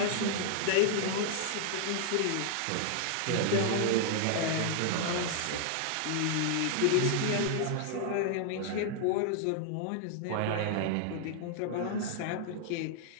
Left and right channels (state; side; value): different; both; correlation -0.01